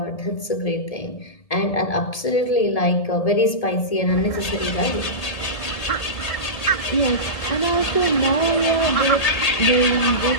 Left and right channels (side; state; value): right; late; 1.8 ms